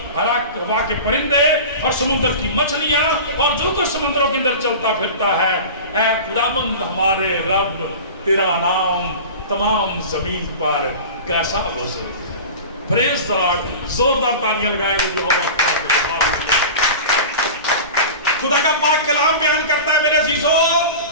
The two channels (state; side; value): inverted; both; correlation -0.33